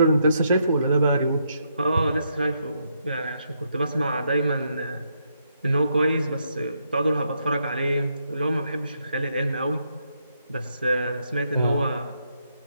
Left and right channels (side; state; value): both; inverted; correlation -0.77